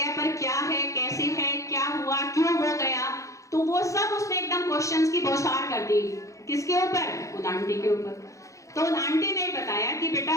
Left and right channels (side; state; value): right; late; 0.15 ms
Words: पर क्या है, कैसे है, क्या हुआ, क्यों हो गया, तो वो सब उसने एकदम क्वेश्चंस की बौछार कर दी। किसके ऊपर? उन आंटी के ऊपर। तो उन आंटी ने बताया कि बेटा